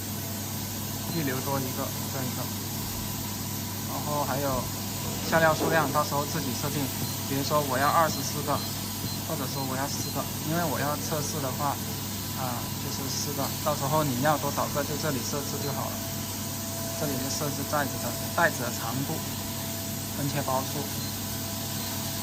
预留多一个这一个，然后还有下料数量，到时候自己设定，比如说我要24个，或者说我要4个，因为我要测试的话。就是4个，到时候你要多少个就这里设置就好了。这里就设置袋子的长度、分切包数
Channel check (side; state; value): both; identical; correlation 1.00